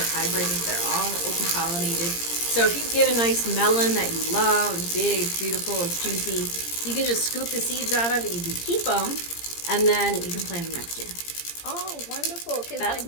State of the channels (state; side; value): late; right; 17 ms